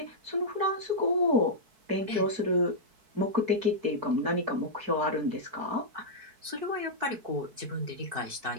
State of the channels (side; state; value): left; late; 4.6 ms